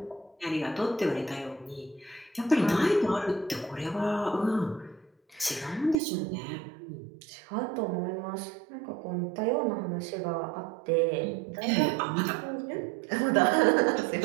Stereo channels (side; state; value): left; drops out; at 6.0 s